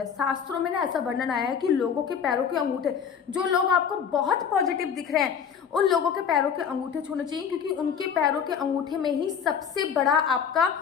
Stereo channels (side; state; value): right; quieter; 7.3 dB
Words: शास्त्रों में ना ऐसा वर्णन आया है कि लोगों के पैरों के अंगूठे, जो लोग आपको बहुत पॉजिटिव दिख रहे हैं उन लोगों के पैरों के अंगूठे छूने चाहिए, क्योंकि उनके पैरों के अंगूठे में ही सबसे बड़ा